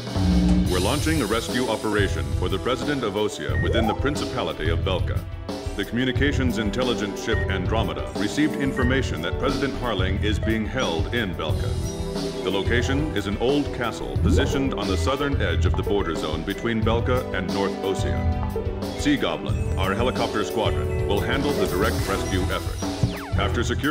We're launching a rescue operation for the President of Osea within the Principality of Belka. The communications intelligence ship Andromeda received information that President Harling is being held in Belka. The location is an old castle positioned on the southern edge of the border zone between Belka and North Osea. Sea Goblin, our helicopter squadron, will handle the direct rescue effort. After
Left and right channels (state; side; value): identical; both; correlation 1.00